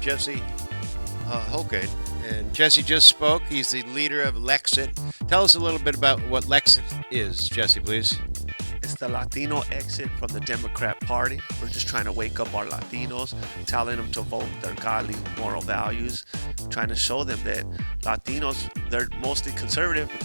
Jesse Holguin, and Jesse just spoke. He's the leader of Lex-it. Tell us a little bit about what Lex-it is, Jesse, please. It's the Latino exit from the Democrat Party. We're just trying to wake up our Latinos, telling them to vote their godly moral values, trying to show them that Latinos, they're mostly conservative, but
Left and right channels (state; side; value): inverted; both; correlation -1.00